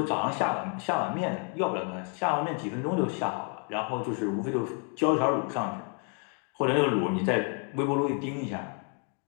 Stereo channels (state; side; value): quieter; right; 39.0 dB